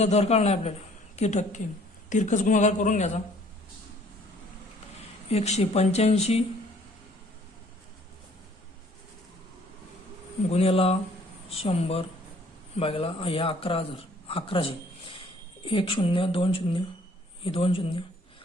दर काढणार आपल्याला किती टक्के. तिरकस गुणाकार करून घ्यायचा. 185 गुणिला 100 भागिला या 11,000 1 0 2 0 हे 2 0.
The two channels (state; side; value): normal; both; correlation 0.58